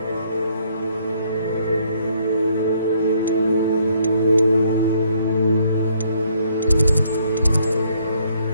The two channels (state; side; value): inverted; both; correlation -0.67